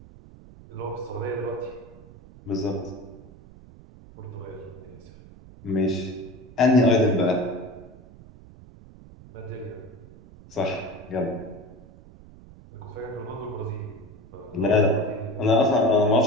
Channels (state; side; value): noise; right; rumble, 20 dB below the sound